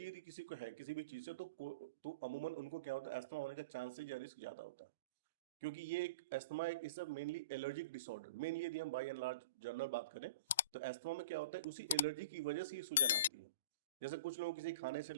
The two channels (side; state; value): both; inverted; correlation -0.37